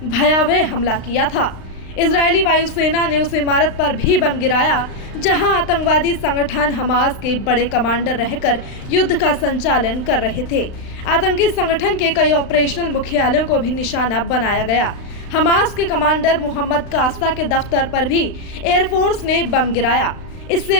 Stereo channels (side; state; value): right; late; 35 ms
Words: भयावह हमला किया था। इजरायली वायुसेना ने उस इमारत पर भी बम गिराया जहां आतंकवादी संगठन हमास के बड़े कमांडर रहकर युद्ध का संचालन कर रहे थे। आतंकी संगठन के कई ऑपरेशनल मुख्यालयों को भी निशाना बनाया गया। हमास के कमांडर मोहम्मद कास्ता के दफ्तर पर भी एयरफोर्स ने बम गिराया। इससे